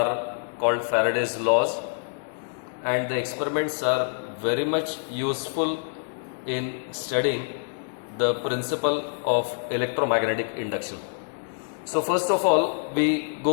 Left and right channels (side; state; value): right; silent; digital silence